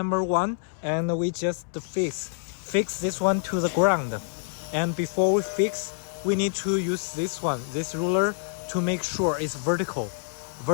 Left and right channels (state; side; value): silent; right; 60 dB below the other